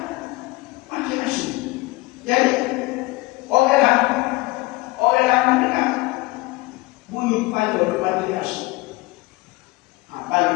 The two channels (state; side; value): quieter; right; 21.9 dB